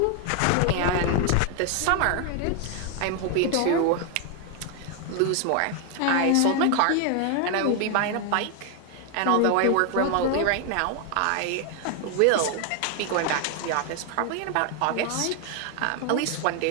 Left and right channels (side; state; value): both; different; correlation 0.00